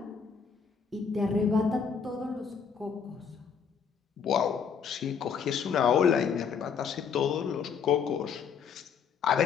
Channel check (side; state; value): right; quieter; 6.6 dB